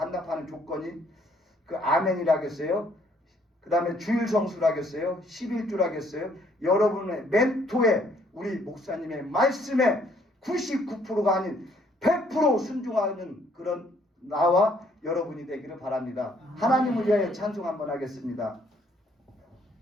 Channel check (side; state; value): both; normal; correlation 0.65